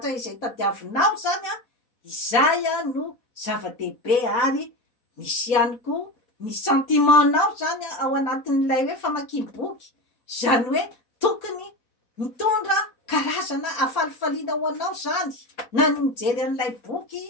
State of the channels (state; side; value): late; right; 4.1 ms